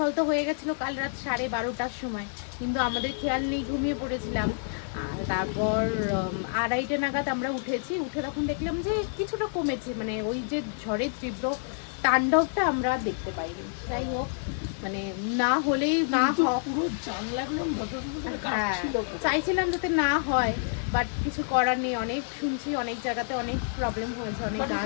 তো হয়ে গেছিলো কাল রাত 12:30টার সময়, কিন্তু আমাদের খেয়াল নেই, ঘুমিয়ে পড়েছিলাম। আর তারপর 2:30 নাগাদ আমরা উঠে তখন দেখলাম যে কিছুটা কমেছে, মানে ওই যে ঝড়ের তীব্র তাণ্ডবটা আমরা দেখতে পাইনি। যাই হোক, মানে না হলেই না, পুরো জানলাগুলো হ্যাঁ চাইছিলাম যাতে না হয়, বাট কিছু করার নেই। অনেক শুনছি অনেক জায়গাতে অনেক প্রবলেম হয়েছে, অনেক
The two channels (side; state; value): right; silent; digital silence